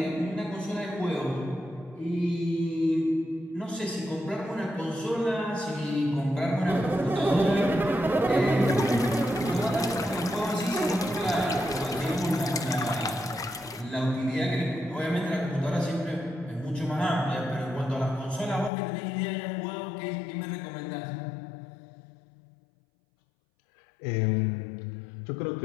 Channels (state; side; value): drops out; right; at 18.7 s